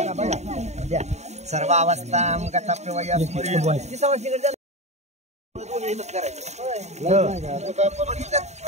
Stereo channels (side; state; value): left; late; 0.32 ms